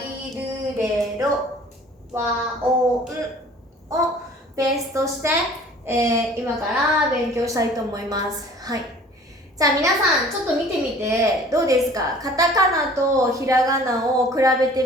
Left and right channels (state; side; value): normal; both; correlation 0.49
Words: るれろ、わおんをベースとして、今から勉強したいと思います。はい。じゃあ皆さんちょっと見てみてどうですか？カタカナとひらがなを比べ